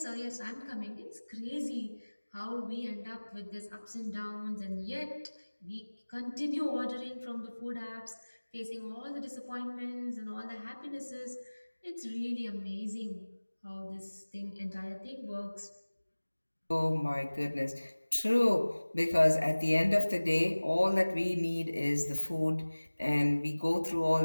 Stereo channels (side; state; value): both; inverted; correlation -1.00